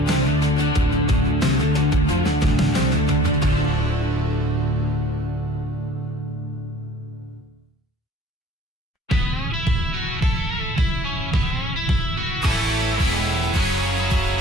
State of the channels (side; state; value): both; normal; correlation 0.50